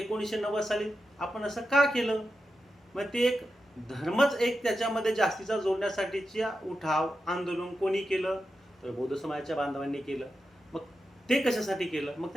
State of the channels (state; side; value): normal; both; correlation 0.89